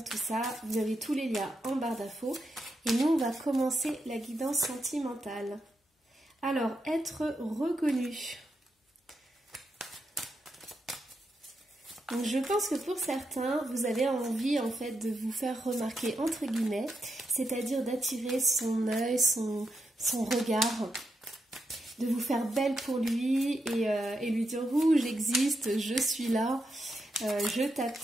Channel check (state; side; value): normal; both; correlation 0.84